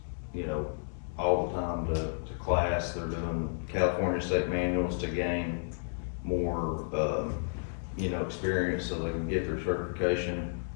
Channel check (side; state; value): right; silent; digital silence